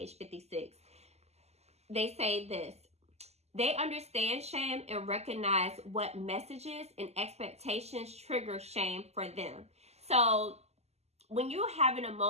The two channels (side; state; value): left; late; 0.31 ms